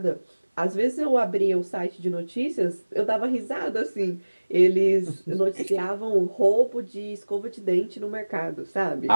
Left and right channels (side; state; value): both; inverted; correlation -1.00